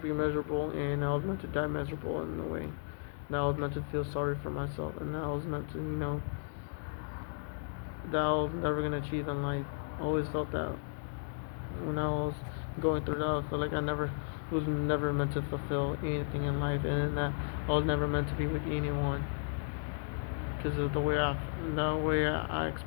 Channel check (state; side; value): silent; right; digital silence